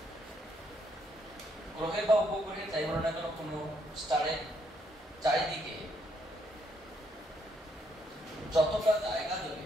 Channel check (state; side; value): normal; both; correlation 0.73